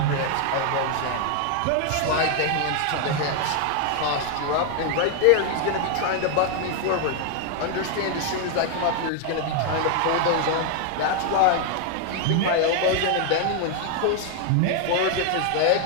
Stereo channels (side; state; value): both; different; correlation 0.00